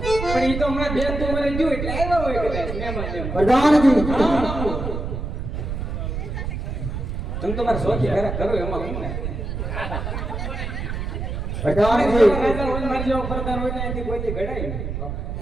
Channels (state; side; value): noise; right; rumble, 4 dB below the sound